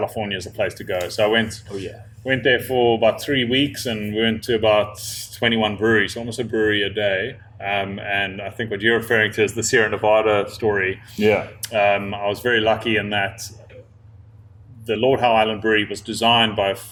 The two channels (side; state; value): both; identical; correlation 1.00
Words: is a place to go. So I went. Oh, yeah. Went there for about 3 weeks, and we went to about 21 breweries, almost a brewery a day. And I think what you're referring to is the Sierra Nevada story. Yeah. I was very lucky in that the Lord Howe Island Brewery was designed by